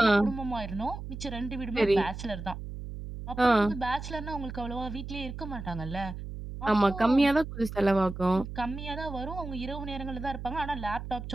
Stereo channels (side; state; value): right; noise; hum, 9 dB below the sound